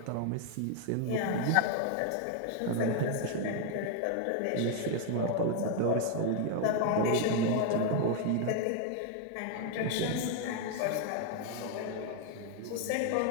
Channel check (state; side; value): different; both; correlation 0.00